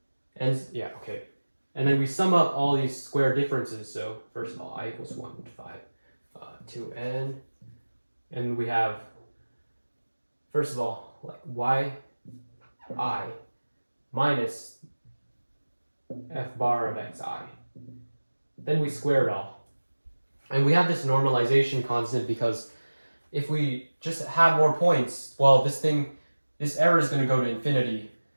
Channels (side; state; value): both; inverted; correlation -1.00